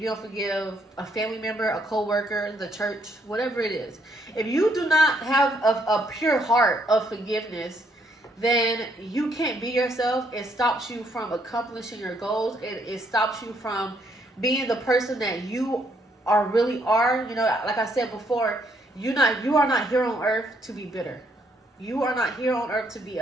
you don't forgive a family member, a co-worker, the church, whatever it is. If you do not have a pure heart of forgiveness, then you can't be yourself. It stops you from accomplishing your goals. It stops you from being the person that you really are. You know, like I said before, you are not here on earth to be bitter. You are not here on earth to be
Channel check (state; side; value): normal; both; correlation 0.71